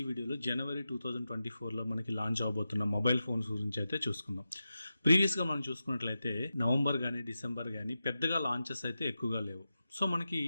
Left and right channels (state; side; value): inverted; both; correlation -0.91